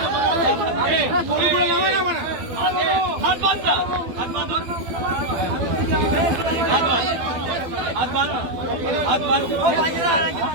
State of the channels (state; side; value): late; left; 12 ms